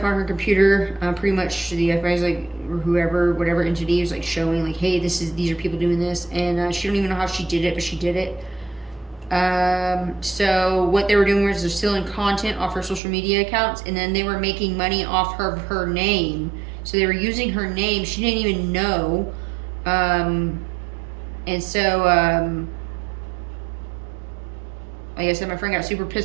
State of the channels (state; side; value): drops out; left; at 13.0 s